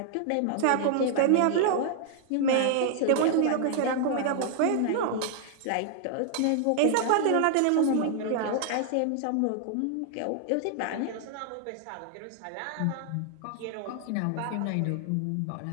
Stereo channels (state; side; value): different; both; correlation -0.01